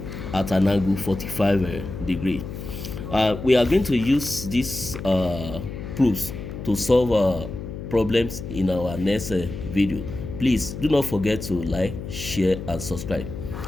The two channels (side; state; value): left; noise; hum, 9 dB below the sound